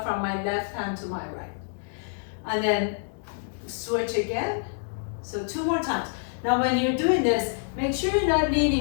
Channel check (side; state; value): right; silent; digital silence